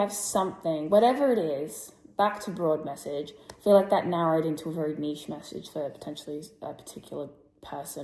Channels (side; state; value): both; identical; correlation 1.00